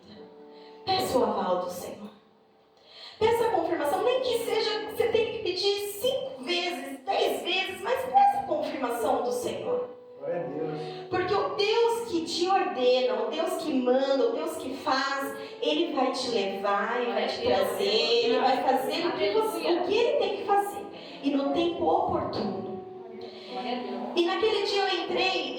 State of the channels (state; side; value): identical; both; correlation 1.00